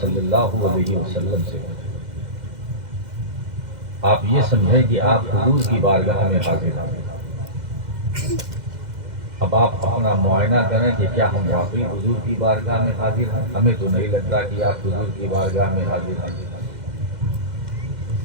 اللہ علیہ وسلم سے ہے۔ آپ یہ سمجھیں کہ آپ حضور کی بارگاہ میں حاضر ہیں۔ اب آپ اپنا معائنہ کریں کہ کیا ہم واقعی حضور کی بارگاہ میں حاضر ہیں؟ ہمیں تو نہیں لگتا کہ آپ حضور کی بارگاہ میں حاضر ہیں۔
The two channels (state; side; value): late; left; 2.1 ms